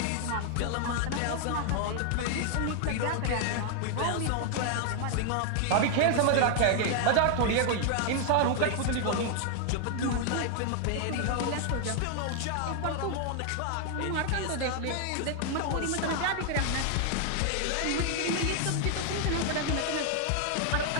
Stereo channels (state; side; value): different; both; correlation 0.00